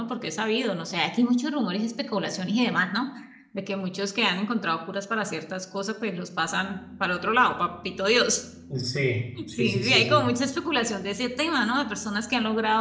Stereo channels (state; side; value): identical; both; correlation 1.00